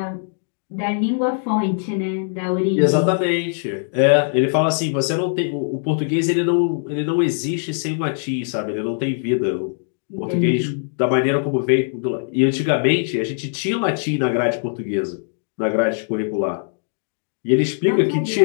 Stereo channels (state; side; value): silent; right; digital silence